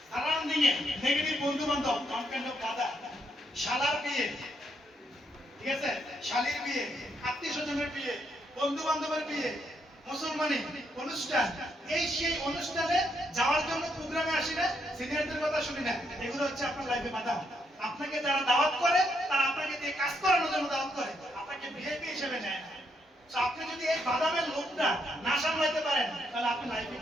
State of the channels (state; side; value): normal; both; correlation 0.76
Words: সারাদিন নেগেটিভ বন্ধু বান্ধব, ওয়ান কাইন্ড অফ বাদাম। শালার বিয়ে, ঠিক আছে, শালীর বিয়ে, আত্মীয় স্বজনের বিয়ে, বন্ধু বান্ধবের বিয়ে, মুসলমানি অনুষ্ঠান, এই সেই অনুষ্ঠানে যাওয়ার জন্য প্রোগ্রামে আসি না, সিনিয়রদের কথা শুনি না, এগুলো হচ্ছে আপনার লাইফে বাদাম। আপনাকে যারা দাওয়াত করে তারা আপনাকে দিয়ে কাজ করানোর জন্য দাওয়াত করে, আপনাকে ভিআইপি হিসেবে নেয় না। তো আপনি যদি এই বাদামের লোকটা না সামলাইতে পারেন, তাহলে আপনি লাইফে